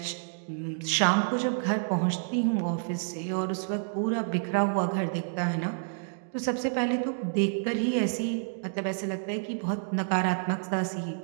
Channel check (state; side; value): silent; left; digital silence